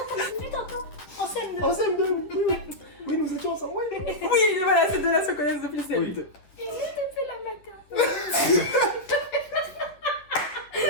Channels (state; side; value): late; right; 10 ms